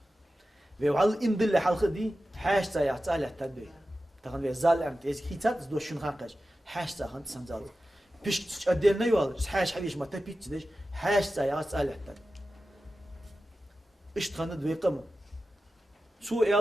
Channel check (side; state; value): both; normal; correlation 0.94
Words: في وعلى إن دل حال خدي حاش تا يعتال التدبير تخن في زال أنت إذا كيتات دوش شن خاقش حاش تا خن تسمزال بيش أدينا يوال حاش حبيش ما تبيت تدش Hash saya asalehtan. İştanı duyqam. Su